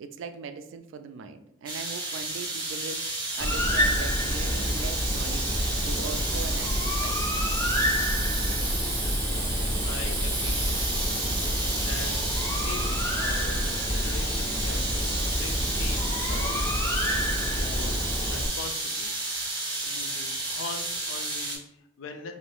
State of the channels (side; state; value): both; normal; correlation 0.35